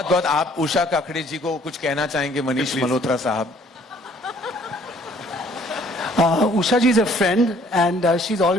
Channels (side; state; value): both; normal; correlation 0.60